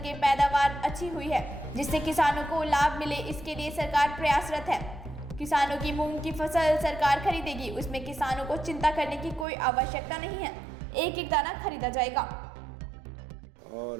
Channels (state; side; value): drops out; left; at 9.5 s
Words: पैदावार अच्छी हुई है जिससे किसानों को लाभ मिले, इसके लिए सरकार प्रयासरत है। किसानों की मूंग की फसल सरकार खरीदेगी, उसमें किसानों को चिंता करने की कोई आवश्यकता नहीं है, एक एक दाना खरीदा जाएगा।